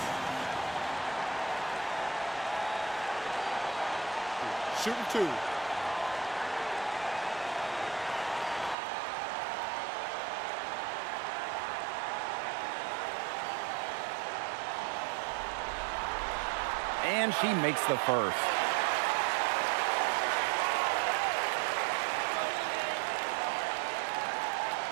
Shooting 2. And she makes the first.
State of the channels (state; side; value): drops out; left; at 8.8 s